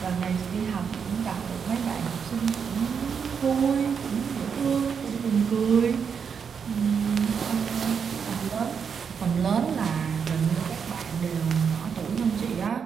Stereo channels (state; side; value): quieter; left; 6.6 dB